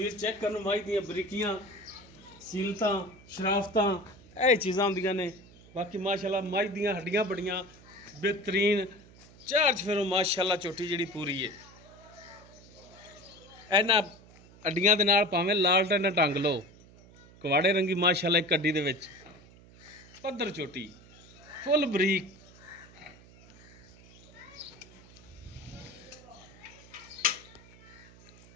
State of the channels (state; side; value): noise; right; hum, 23 dB below the sound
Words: चेक करन माई दी बरीकियां सीलतां शराफतां ਇਹ ਚੀਜ਼ਾਂ ਹੁੰਦੀਆਂ ਨੇ ਬਾਕੀ ਮਾਸ਼ਾਅੱਲਾ ਮਾਈ ਦੀਆਂ ਹੱਡੀਆਂ ਬੜੀਆਂ ਬਿਹਤਰੀਨ ਚਾਰ ਚਫੇਰੋਂ ਮਾਸ਼ਾਅੱਲਾ ਝੋਟੀ ਜਿਹੜੀ ਪੂਰੀ ਹੈ ਇਹਨਾਂ ਹੱਡੀਆਂ ਦੇ ਨਾਲ ਭਾਵੇਂ ਲਾਲਟਨ ਟੰਗ ਲਓ ਕਵਾੜੇ ਰੰਗੀ ਮਾਸ਼ਾਅੱਲਾ ਇੱਕ ਅੱਡੀ ਦੇ ਵਿੱਚ ਪੱਧਰ ਝੋਟੀ ਫੁੱਲ ਬਰੀਕ